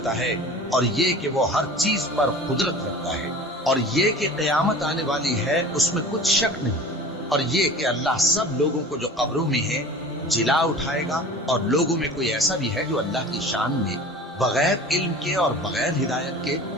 है, और ये कि वो हर चीज पर कुदरत रखता है, और ये कि क़यामत आने वाली है उसमें कुछ शक नहीं, और ये कि अल्लाह सब लोगों को जो कब्रों में है जिला उठाएगा। और लोगों में कोई ऐसा भी है जो अल्लाह की शान में बगैर इल्म के और बगैर हिदायत के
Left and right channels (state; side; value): normal; both; correlation 0.39